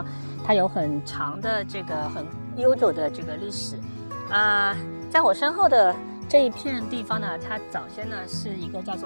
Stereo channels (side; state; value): both; inverted; correlation -1.00